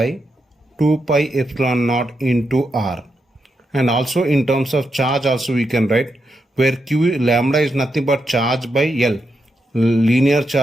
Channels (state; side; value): normal; both; correlation 0.84